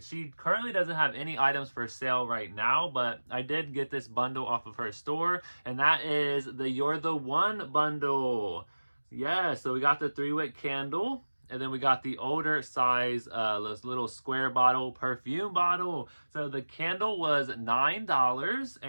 She currently doesn't have any items for sale right now, but I did get this bundle off of her store, and that is the You're the One bundle. Yeah, so we got the 3-wick candle. And then we got the older size, this little square bottle, perfume bottle. So the candle was $9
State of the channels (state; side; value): inverted; both; correlation -1.00